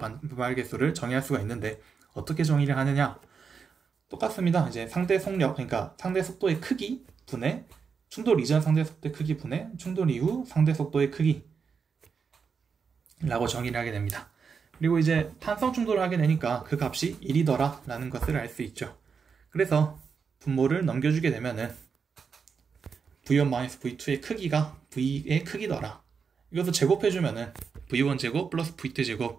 정의할 수가 있는데 어떻게 정의를 하느냐? 똑같습니다. 이제 상대 속력, 그러니까 상대 속도의 크기 분의 충돌 이전 상대 속도의 크기 분의 충돌 이후 상대 속도의 크기 라고 정의를 하게 됩니다. 그리고 이제 탄성 충돌을 하게 되니까 그 값이 1이더라 라는 것을 알 수 있죠. 그래서 분모를 넘겨주게 되면은 V1-V2의 크기가 V의 크기더라. 이것을 제곱해주면은 V1제곱 플러스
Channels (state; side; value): quieter; left; 5.9 dB